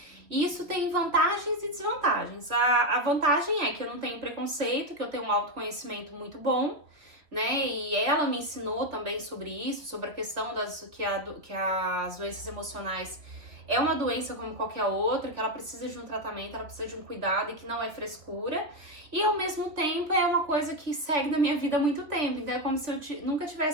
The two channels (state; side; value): late; left; 3.2 ms